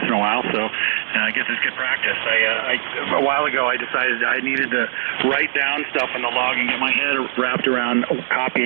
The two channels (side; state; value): left; silent; 66 dB below the other